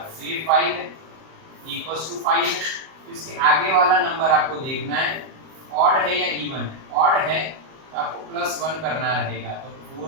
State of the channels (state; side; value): late; left; 38 ms